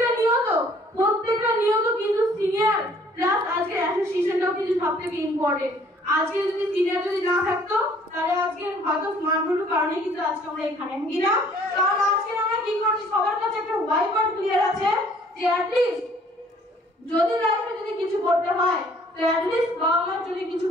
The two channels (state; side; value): normal; both; correlation 0.58